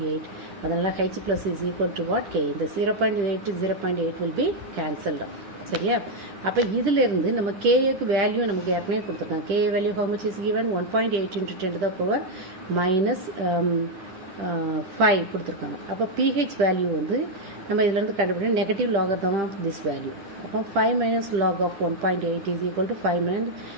அதனால H plus is equal to what? K. The 0.8 to 0.8 will be cancelled out. சரியா? அப்போ இதிலிருந்து நம்ம Kக்கு value நமக்கு ஏற்கனவே கொடுத்துருக்காங்க. K value how much is given? 1.8 into 10 to the power minus 5 கொடுத்துருக்காங்க. அப்போ pH வேல்யூ வந்து நம்ம இதிலிருந்து கண்டுபிடிக்க negative logarithm of this value. அப்போ 5 minus log of 1.8 is equal to 5 minus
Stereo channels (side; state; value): left; late; 10 ms